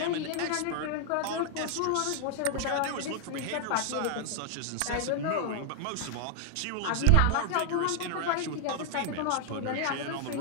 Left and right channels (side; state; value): both; different; correlation 0.00